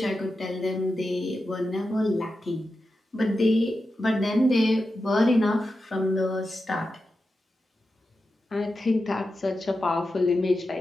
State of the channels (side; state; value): both; normal; correlation 0.90